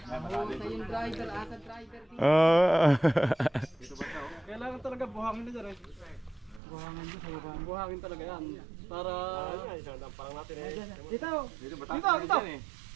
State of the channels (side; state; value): left; drops out; at 6.6 s